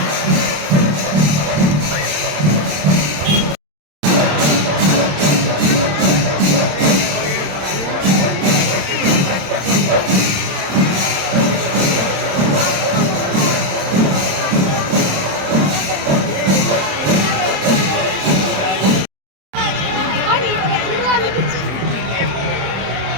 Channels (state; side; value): late; left; 27 ms